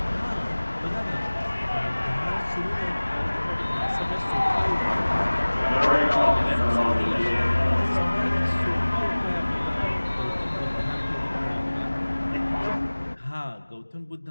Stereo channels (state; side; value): inverted; both; correlation -1.00